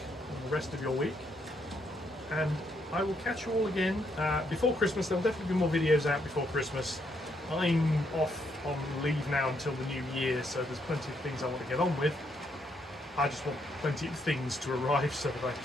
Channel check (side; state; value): both; normal; correlation 0.75